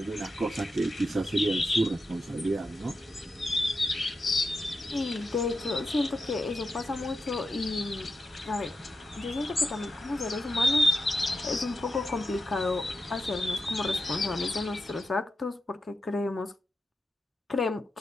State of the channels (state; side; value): normal; both; correlation 0.88